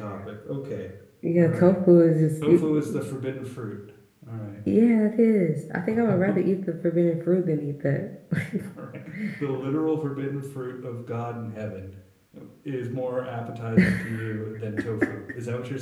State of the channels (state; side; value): identical; both; correlation 1.00